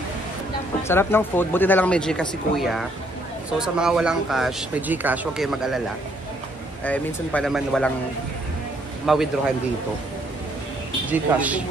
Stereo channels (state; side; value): normal; both; correlation 0.68